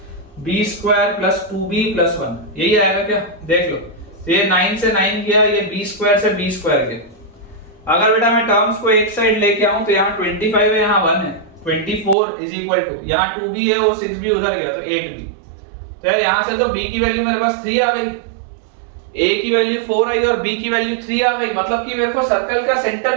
B square plus 2B plus 1। यही आएगा क्या, देख लो। तो ये 9 से 9 गया, ये B स्क्वायर से B स्क्वायर गया। अगर बेटा मैं टर्म्स को एक साइड लेके आऊं तो यहाँ 25 है, यहाँ 1 है, 24 इज इक्वल टू यहाँ 2B है, वो 6B उधर गया तो 8B। तो यार यहाँ से तो B की वैल्यू मेरे पास 3 आ गई, A की वैल्यू 4 आई और B की वैल्यू 3 आ गई। मतलब कि मेरे को सर्कल का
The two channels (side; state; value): left; drops out; at 12.2 s